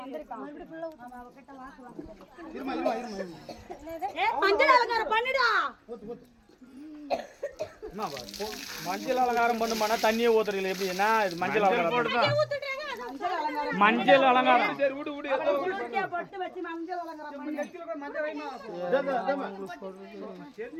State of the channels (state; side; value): identical; both; correlation 1.00